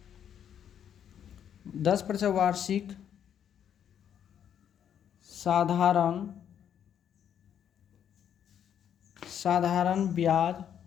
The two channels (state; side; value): quieter; right; 9.1 dB